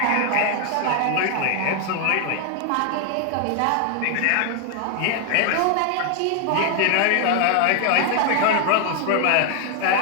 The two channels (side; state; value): both; different; correlation 0.00